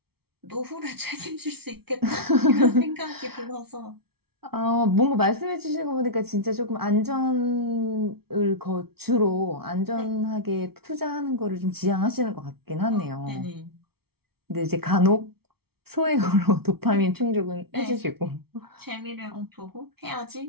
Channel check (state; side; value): late; left; 0.95 ms